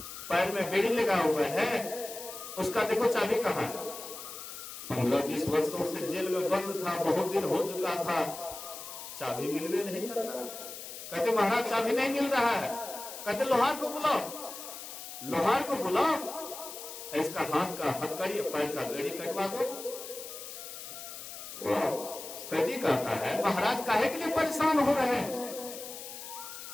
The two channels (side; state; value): left; noise; hiss, 11 dB below the sound